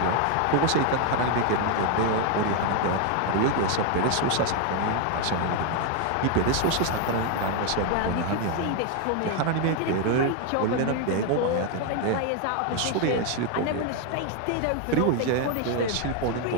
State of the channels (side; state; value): both; different; correlation 0.01